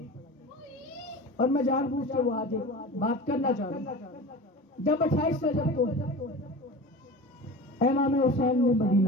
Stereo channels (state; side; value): normal; both; correlation 0.34